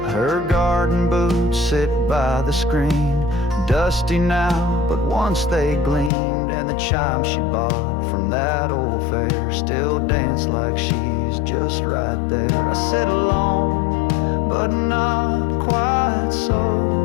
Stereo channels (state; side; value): drops out; right; at 6.1 s